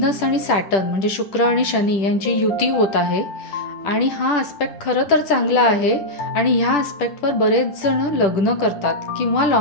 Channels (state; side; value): late; right; 10 ms